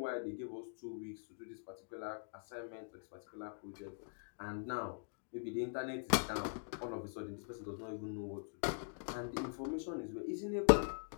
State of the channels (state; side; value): silent; right; digital silence